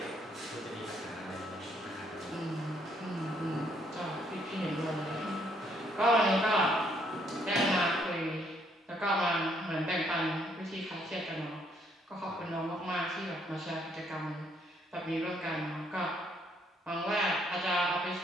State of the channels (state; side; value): normal; both; correlation 0.69